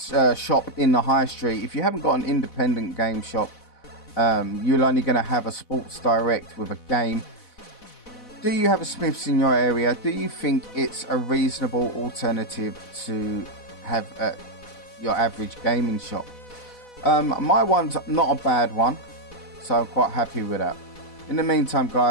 shop in the high street, if you haven't got an independent game shop, you're only going to have a Sports Direct with a game. Do you have a Smyths in your area? Do you think it's a reasonable alternative to have your average gaming shop? My one's not a bad one, so I'm quite happy with that. In the meantime,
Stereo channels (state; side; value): late; right; 4.1 ms